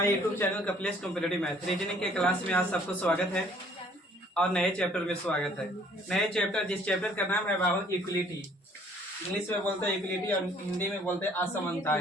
YouTube channel Kapilesh competitive math reasoning के क्लास में आज सबको स्वागत है और नए चैप्टर में स्वागत है। नए चैप्टर, जिस चैप्टर का नाम है बाबू इक्वलिटी। इंग्लिश में बोलते हैं इक्वलिटी और हिंदी में बोलते हैं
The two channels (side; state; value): both; normal; correlation 0.58